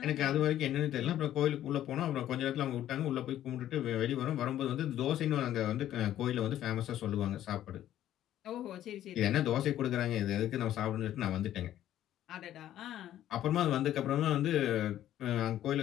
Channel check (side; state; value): right; quieter; 12.2 dB